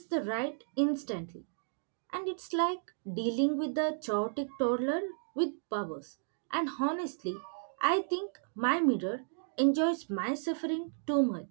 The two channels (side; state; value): left; silent; digital silence